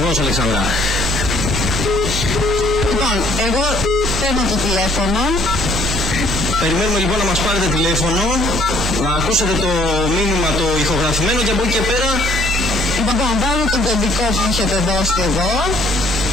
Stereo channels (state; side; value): normal; both; correlation 0.60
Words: Αλεξάνδρα. Λοιπόν, εγώ παίρνω το τηλέφωνο. Περιμένουμε λοιπόν να μας πάρετε τηλέφωνο, να ακούσετε το μήνυμα το ηχογραφημένο και από εκεί και πέρα... Λοιπόν, βάλω τον κωδικό που έχετε δώσει εδώ.